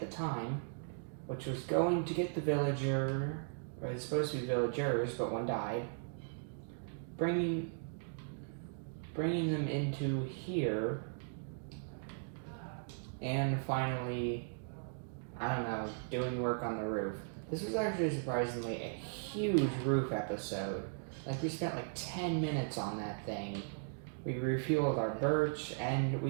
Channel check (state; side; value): silent; left; digital silence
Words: the time, which was going to get the villager, or it's supposed to be villagers, but one died, bringing them into here, and finally, I don't know, doing work on the roof. This was actually surprisingly a huge roof episode. Like, we spent like 10 minutes on that thing. We refueled our birch, and